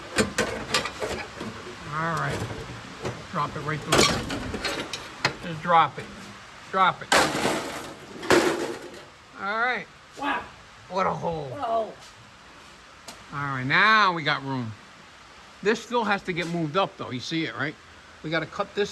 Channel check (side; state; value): both; identical; correlation 1.00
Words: All right. Drop it right through. Just drop it. Drop it. All right. Wow. What a hole. Whoa. All right, now we got room. This still has to get moved up, though. You see it, right? We got to cut